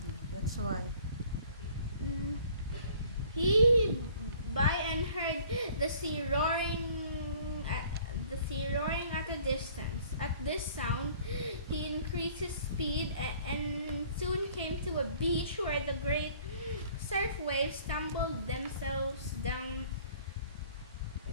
That's why. He by and heard the sea roaring at a distance. At this sound, he increased his speed and soon came to a beach where the great surf waves tumbled themselves down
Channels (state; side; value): inverted; both; correlation -0.53